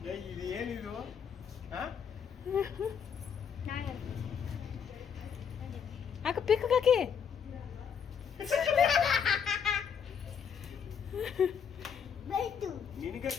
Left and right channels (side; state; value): right; quieter; 7.3 dB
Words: ಇದು ಏನಿದು ಹಾ ಅಕ್ಕ ಪಿಕ್ ಹಾಕಿ ಬೈತು